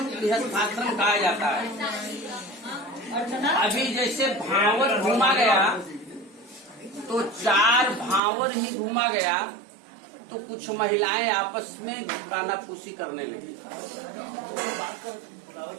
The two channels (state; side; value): drops out; left; at 8.2 s